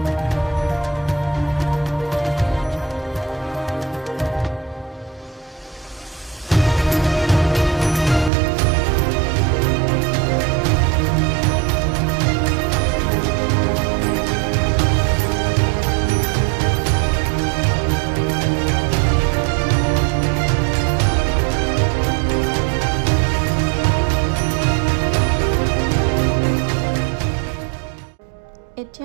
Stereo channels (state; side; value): drops out; left; at 8.3 s